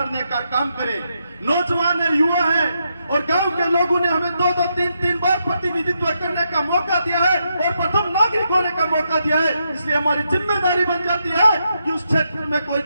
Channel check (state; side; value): inverted; both; correlation -0.81